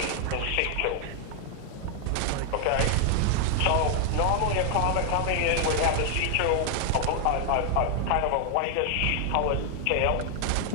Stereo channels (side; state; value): both; different; correlation 0.00